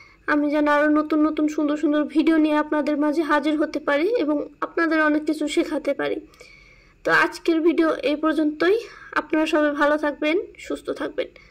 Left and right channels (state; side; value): identical; both; correlation 1.00